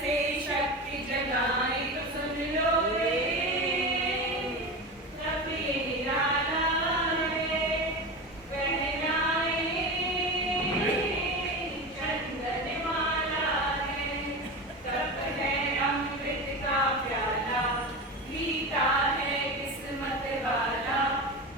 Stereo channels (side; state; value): both; normal; correlation 0.25